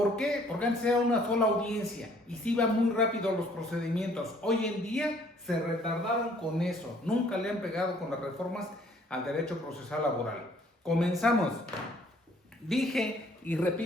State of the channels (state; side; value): normal; both; correlation 0.61